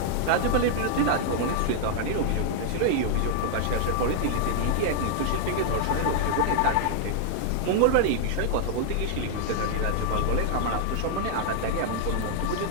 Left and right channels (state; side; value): different; both; correlation 0.00